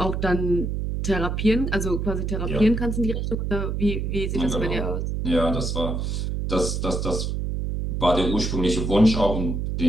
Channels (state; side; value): noise; right; hum, 1 dB below the sound